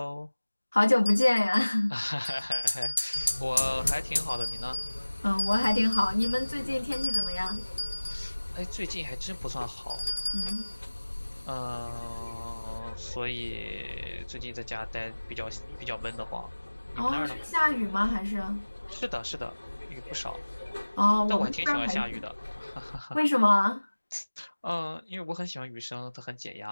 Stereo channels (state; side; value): inverted; both; correlation -1.00